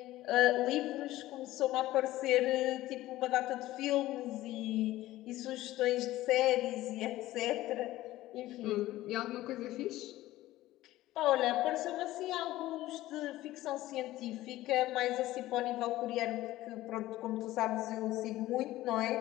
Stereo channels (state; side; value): quieter; right; 16.1 dB